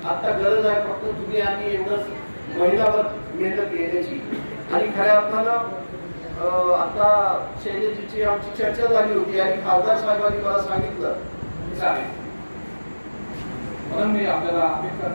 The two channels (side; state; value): both; inverted; correlation -1.00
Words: आता गरज आहे फक्त तुम्ही आणि एवढंच महिलावर मेहनत घेण्याची. आणि खऱ्या अर्थानं आता शैलेजीची आमची चर्चा झाली होती आणि खासदार साहेबांनी मला सांगितलं म्हणून मी आपल्याला अपेक्षा